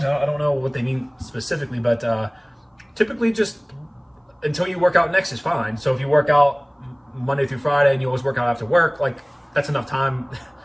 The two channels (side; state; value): both; identical; correlation 1.00